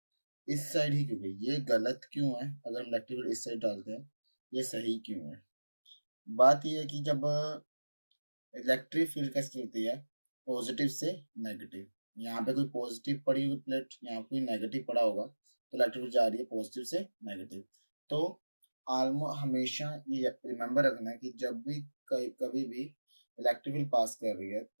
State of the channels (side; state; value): both; inverted; correlation -1.00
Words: इस साइड ही क्यों गई? ये गलत क्यों है? अगर हम इलेक्ट्रिक इस साइड डालते हैं, ये सही क्यों है? बात ये है कि जब इलेक्ट्रिक फील्ड कैसे चलती है, पॉजिटिव से नेगेटिव। यहाँ पे कोई पॉजिटिव पड़ी हुई प्लेट, यहाँ कोई नेगेटिव पड़ा होगा, तो इलेक्ट्रिक फील्ड जा रही है पॉजिटिव से नेगेटिव। तो ऑलमोस्ट हमेशा ये रिमेंबर रखना है कि जब भी कभी भी इलेक्ट्रिक फील्ड पास कर रही है,